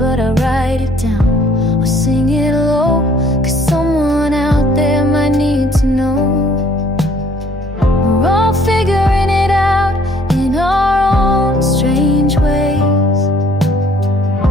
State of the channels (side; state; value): both; normal; correlation 0.60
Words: I write it down or sing it low, 'cause someone out there might need to know. We're all figuring it out in our own strange ways.